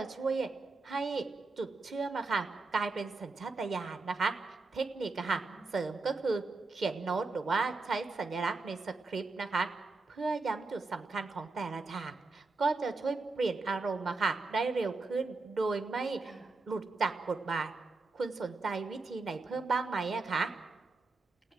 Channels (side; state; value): left; quieter; 3.7 dB